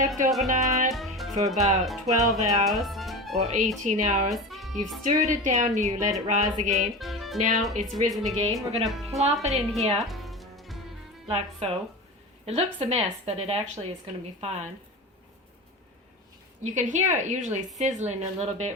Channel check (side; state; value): both; normal; correlation 0.28